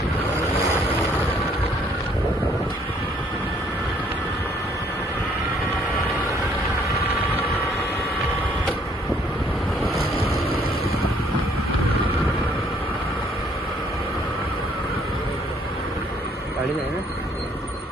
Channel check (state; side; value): normal; both; correlation 0.64